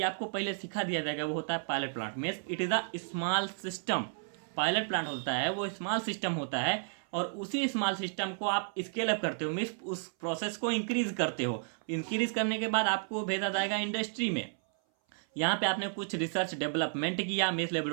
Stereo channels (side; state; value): left; silent; 56 dB below the other